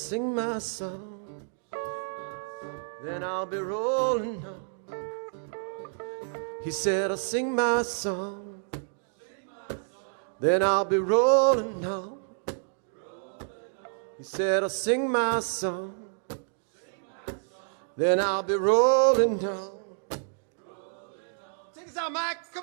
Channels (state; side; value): silent; left; digital silence